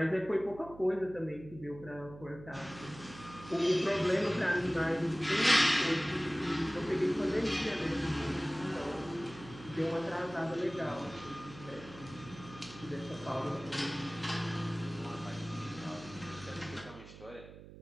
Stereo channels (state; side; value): noise; right; hum, 16 dB below the sound